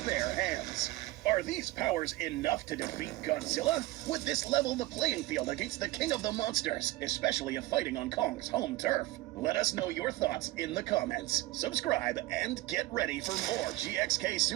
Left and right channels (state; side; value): quieter; left; 18.6 dB